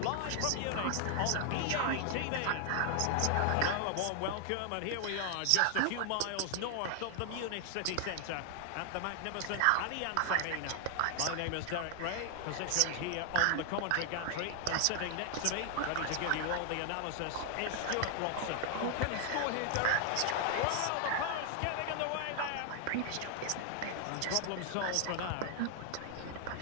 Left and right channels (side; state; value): both; different; correlation 0.00